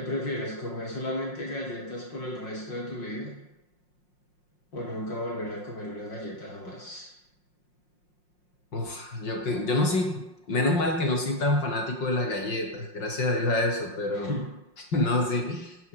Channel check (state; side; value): late; right; 5.6 ms